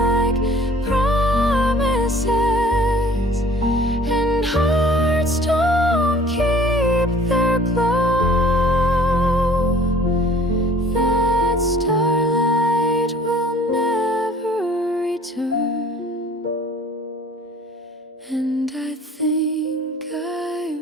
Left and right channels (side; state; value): both; normal; correlation 0.51